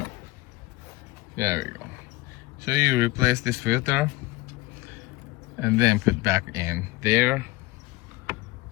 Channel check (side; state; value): right; quieter; 19.5 dB